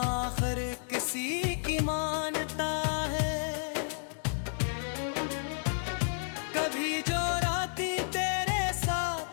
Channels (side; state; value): right; silent; digital silence